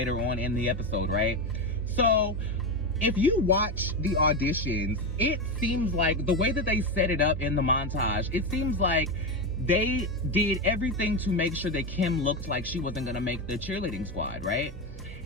on in the episode, right? So if you watch the auditions, it seems like the way that they set it up in the montage, it seems like they did everything to make sure that Kim looked like she wasn't gonna make the cheerleading squad, right?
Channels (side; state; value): both; normal; correlation 0.14